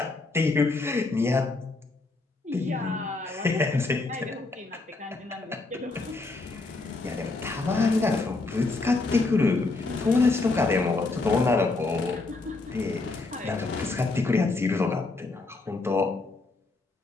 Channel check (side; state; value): right; quieter; 3.4 dB